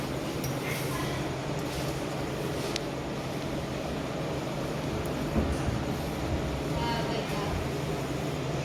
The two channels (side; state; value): both; identical; correlation 1.00